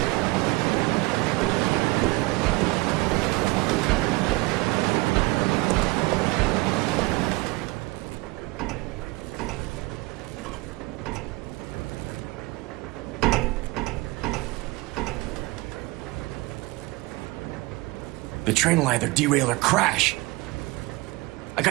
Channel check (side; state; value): left; quieter; 22.7 dB